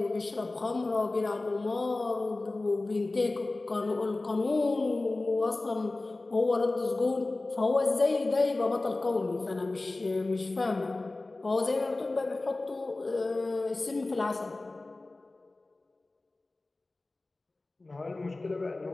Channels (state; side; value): quieter; right; 3.1 dB